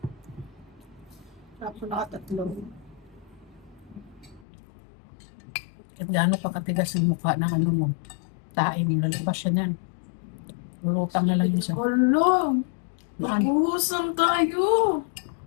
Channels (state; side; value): drops out; right; at 4.5 s